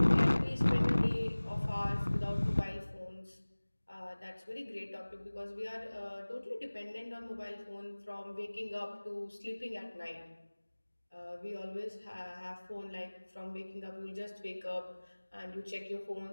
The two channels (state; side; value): inverted; both; correlation -1.00